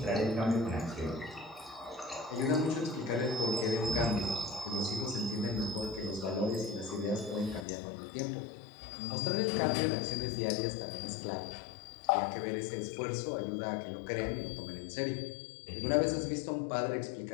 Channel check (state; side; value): drops out; right; at 7.7 s